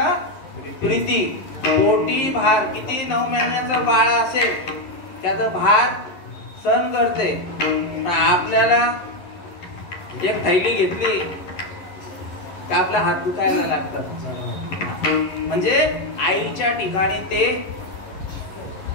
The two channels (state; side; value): late; right; 11 ms